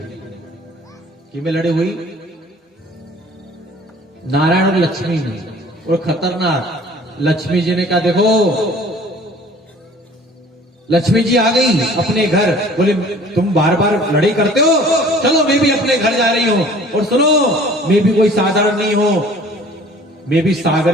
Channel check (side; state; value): both; normal; correlation 0.50